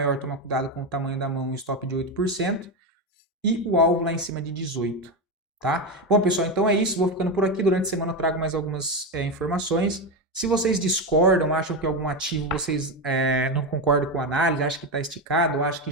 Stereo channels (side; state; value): both; normal; correlation 0.13